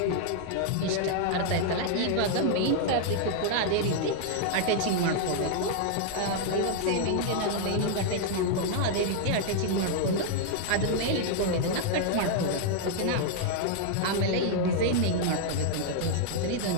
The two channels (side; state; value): both; different; correlation 0.00